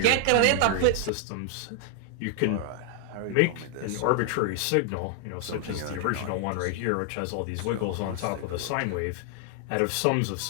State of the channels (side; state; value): both; different; correlation 0.00